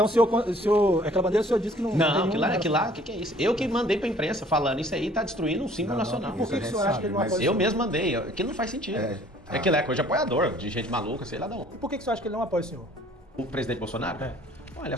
aquela bandeira o senhor disse que não... Não, aquilo lá, o que é isso? Eu que mandei pra imprensa falando isso aí, tá destruindo um símbolo nacional. Por que o senhor acha que ele não apoia? Eu mesmo mandei. Aquilo não faz sentido. Aquilo é coisa de apoiador, de gente maluca, sei lá de onde. E por que o senhor acha que ele não apoia o senhor? O presidente Bolsonaro? Olha,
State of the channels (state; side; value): normal; both; correlation 0.55